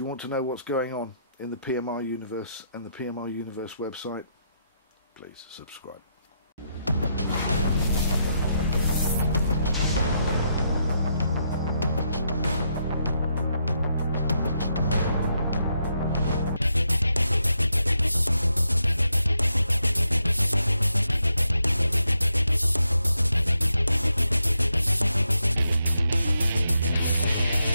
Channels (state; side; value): inverted; both; correlation -0.80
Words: want to know what's going on in the PMR universe and the PMR universe website, please subscribe.